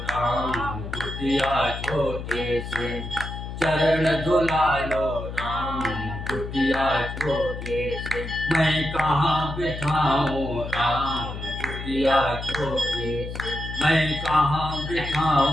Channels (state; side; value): noise; left; hum, 8 dB below the sound